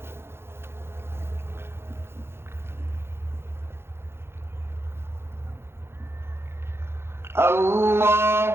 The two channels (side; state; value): left; late; 0.12 ms